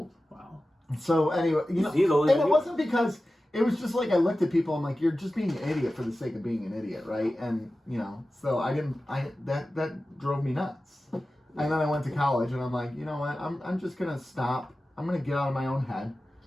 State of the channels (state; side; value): normal; both; correlation 0.95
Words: So anyway, he's older and than it you. wasn't because it was just like I looked at people. I'm like, you're just being an idiot for the sake of being an idiot, right? And so that drove me nuts. And then I went to college, and I'm like, you know what? I'm just gonna stop. I'm gonna get out of my own head,